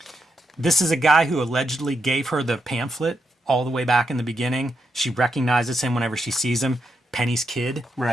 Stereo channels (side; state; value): both; normal; correlation 0.82